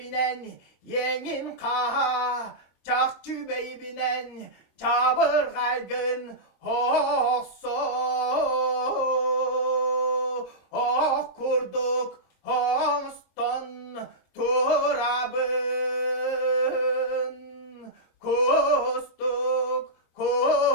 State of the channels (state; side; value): late; right; 26 ms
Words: yengin kaha çakçı bey binen çabır kaygın hosso oh kurduk hoston turabın kustuk